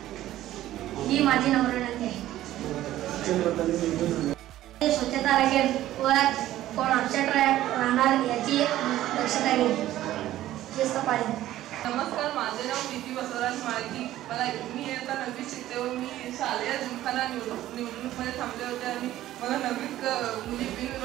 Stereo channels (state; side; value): quieter; left; 14.1 dB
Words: ही माझी नम्र विनंती आहे। स्वच्छता राखेल व कोण अपसेट राहणार याची दक्षता घेईल। शिस्त पाळेल। नमस्कार, माझे नाव प्रीती बसवराज माळकी। मी इयत्ता 9वीत शिकते व मी शालेय जिमखाना निवडणूकमध्ये थांबले होते आणि मला 9वीत मुली